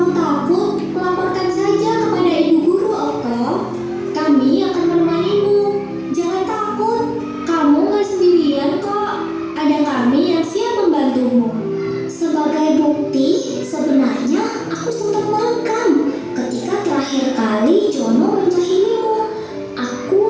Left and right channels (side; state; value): both; identical; correlation 1.00